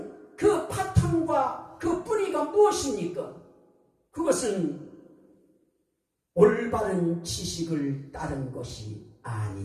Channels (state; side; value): identical; both; correlation 1.00